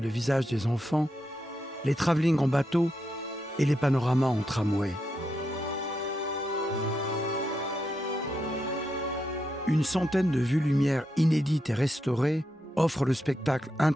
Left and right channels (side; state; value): both; normal; correlation 0.83